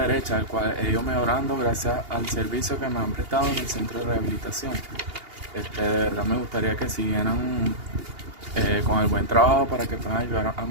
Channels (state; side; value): late; left; 2.8 ms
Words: el cual he ido mejorando gracias al servicio que me han prestado en el centro de rehabilitación. De verdad me gustaría que siguieran con el buen trabajo para que puedan ayudar a